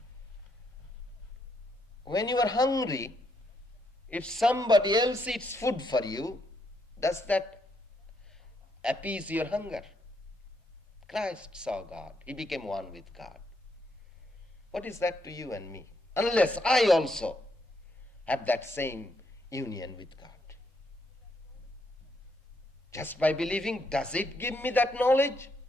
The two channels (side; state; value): both; normal; correlation 0.76